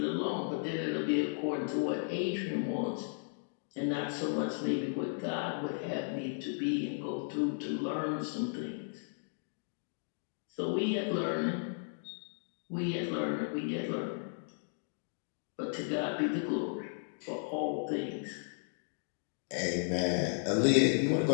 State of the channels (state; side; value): silent; right; digital silence